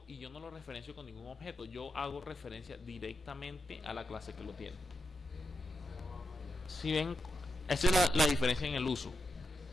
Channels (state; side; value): normal; both; correlation 0.88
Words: y yo no lo referencio con ningún objeto. Yo hago referencia directamente a la clase que lo tiene. Si ven, esa es la diferencia en el uso.